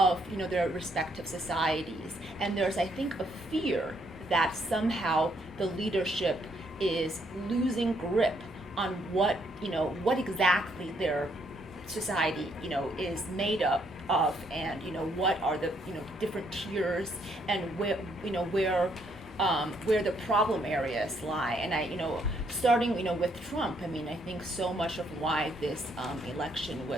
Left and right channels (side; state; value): both; normal; correlation 0.71